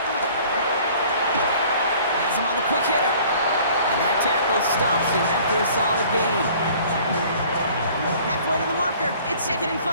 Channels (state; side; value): inverted; both; correlation -0.52